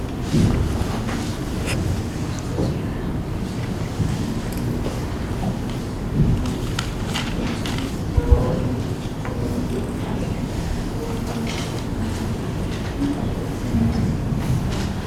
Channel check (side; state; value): both; identical; correlation 1.00